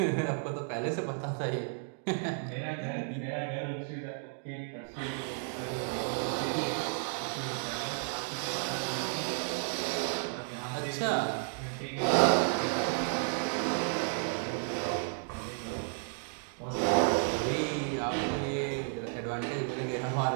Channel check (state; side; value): silent; left; 55 dB below the other